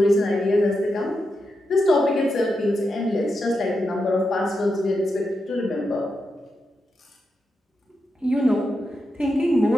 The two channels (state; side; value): normal; both; correlation 0.86